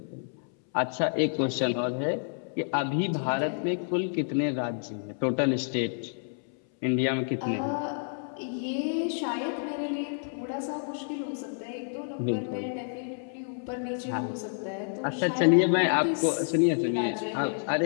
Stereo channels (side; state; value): right; silent; 58 dB below the other